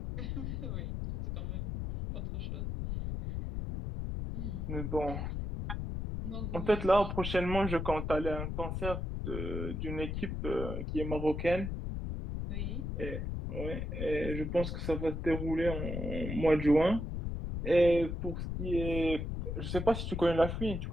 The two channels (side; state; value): left; noise; rumble, 3 dB below the sound